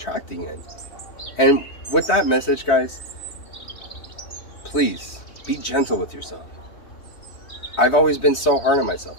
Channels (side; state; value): right; late; 3.2 ms